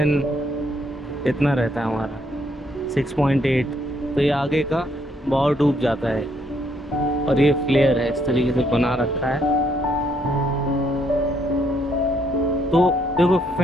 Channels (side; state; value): both; normal; correlation 0.71